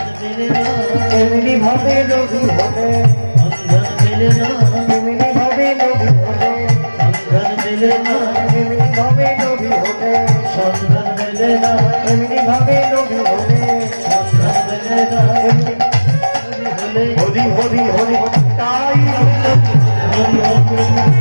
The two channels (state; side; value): inverted; both; correlation -1.00